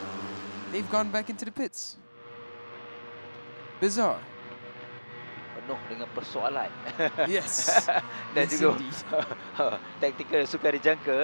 they've gone back into the pits. Bizarre. Penuh dengan persoalan. Yes. Dan yes, juga indeed. taktikal sukar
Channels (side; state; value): both; inverted; correlation -1.00